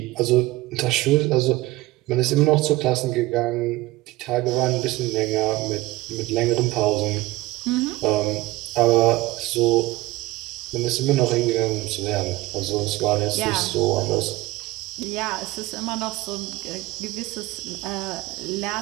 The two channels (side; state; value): left; quieter; 19.0 dB